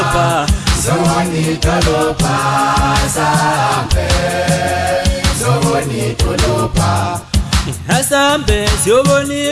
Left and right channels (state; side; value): identical; both; correlation 1.00